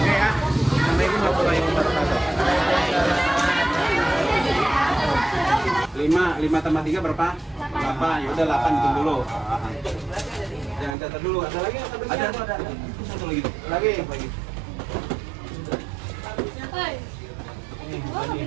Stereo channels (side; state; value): left; drops out; at 11.0 s